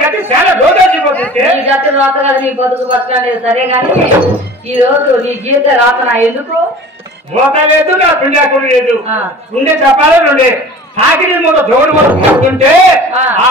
చాలా రోజుపోతుంది నీ గతి రాత కదా నీ బతుకు బతకలేదు సరే గాని ఈ రోజు నీ గీత రాతనా ఎందుకు మోత లేదు నా పిండాకుడు లేదు ఉండే చెప్పాలి నుండే సాగిరి మూత జోడు మూత పడుతుంటే ఆ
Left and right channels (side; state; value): both; normal; correlation 0.42